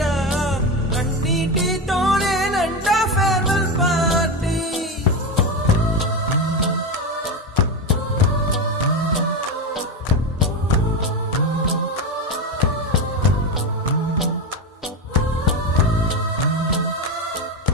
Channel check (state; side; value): normal; both; correlation 0.17